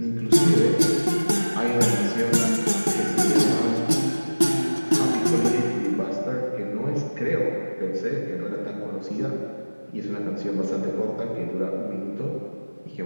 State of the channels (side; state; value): both; inverted; correlation -1.00